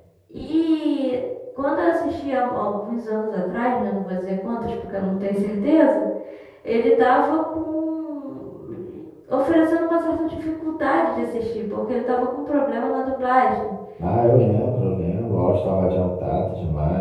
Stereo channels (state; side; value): identical; both; correlation 1.00